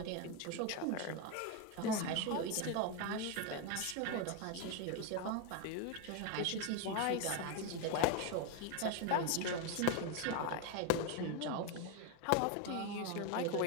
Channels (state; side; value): different; both; correlation 0.02